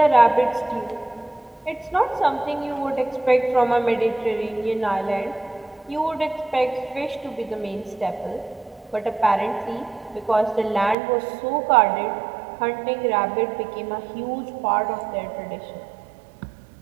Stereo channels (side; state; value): left; drops out; at 11.0 s